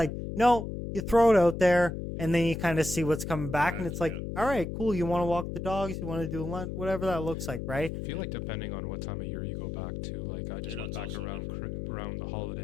no, you throw it out there. And then you kind of see what's coming back, and it's like, all right, cool. You want to walk the dogs, you want to do lunch, whatever that looks like, right? I feel like depending on what time of year you go back to, like I just went back around the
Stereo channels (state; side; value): noise; left; hum, 5 dB below the sound